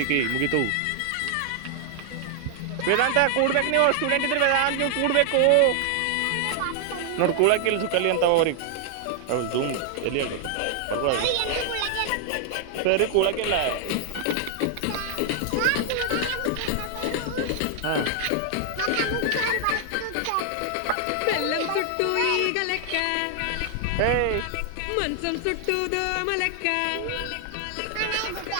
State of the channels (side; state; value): both; different; correlation 0.00